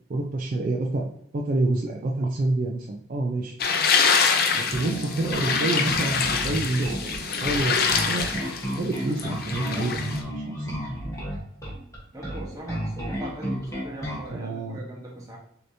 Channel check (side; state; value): both; normal; correlation 0.43